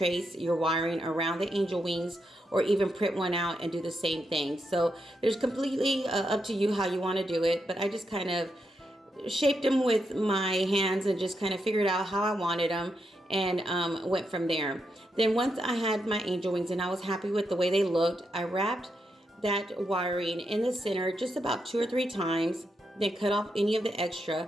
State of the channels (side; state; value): both; normal; correlation 0.83